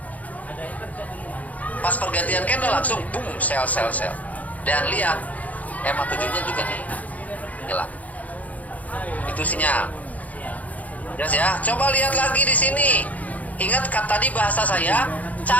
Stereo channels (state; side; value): late; right; 0.074 ms